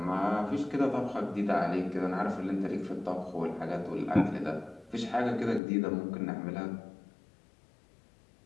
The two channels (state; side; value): drops out; right; at 5.6 s